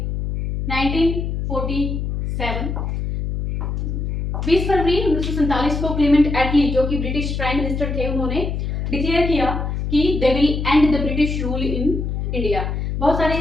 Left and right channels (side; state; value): left; noise; hum, 2 dB below the sound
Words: 1947, 20 फरवरी 1947 को क्लेमेंट एटली, जो कि ब्रिटिश प्राइम मिनिस्टर थे, उन्होंने डिक्लेयर किया कि they will and the British rule in India. बहुत सारे